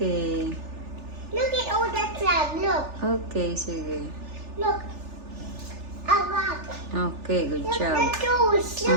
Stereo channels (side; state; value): left; late; 3.4 ms